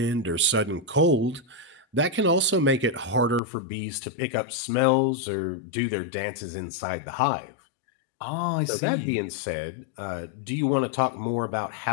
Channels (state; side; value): drops out; right; at 3.4 s